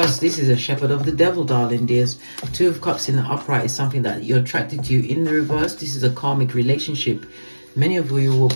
This is a shepherd of the devil, darling dears. 2 of Cups in the upright is something that you're attracted to. In the reverse, this is a karmic relationship. Many of you were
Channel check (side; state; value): both; inverted; correlation -1.00